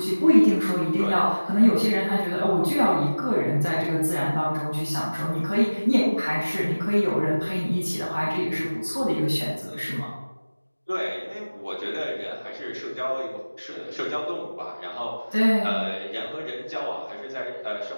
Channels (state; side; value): inverted; both; correlation -1.00